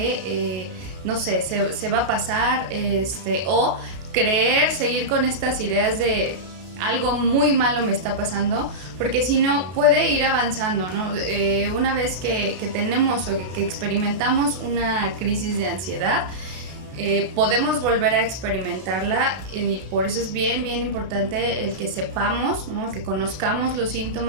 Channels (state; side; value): late; left; 32 ms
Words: no sé, se va a pasar, o seguir con estas ideas de algo muy malo me está pasando, porque si no puede ir avanzando, ¿no? Una vez que tenemos o que experimentamos una crisis de ansiedad, podemos volver a experimentarla, y por eso es bien importante el que sepamos, ¿no? Que conozcamos los